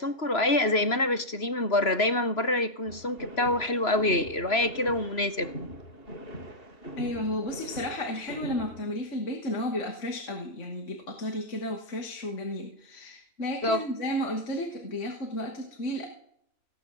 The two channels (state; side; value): late; right; 3.0 ms